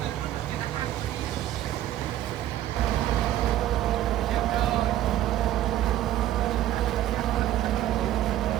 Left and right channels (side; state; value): left; quieter; 12.8 dB